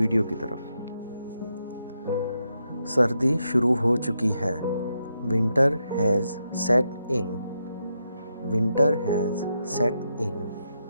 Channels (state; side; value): inverted; both; correlation -0.83